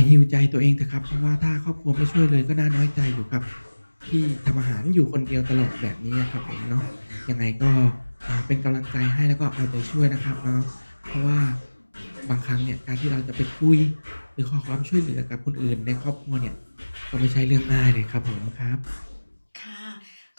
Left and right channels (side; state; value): both; inverted; correlation -1.00